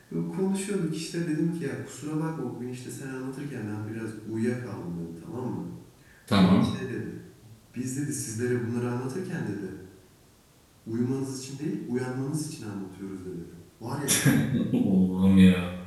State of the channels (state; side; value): identical; both; correlation 1.00